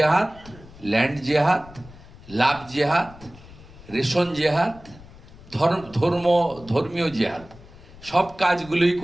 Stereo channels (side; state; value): left; noise; rumble, 20 dB below the sound